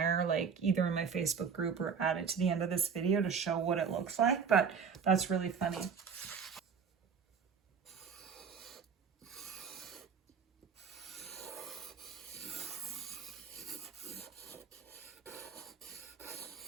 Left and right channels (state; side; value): quieter; left; 6.4 dB